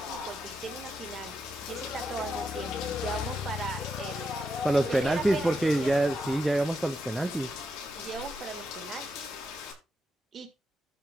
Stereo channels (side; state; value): both; normal; correlation 0.83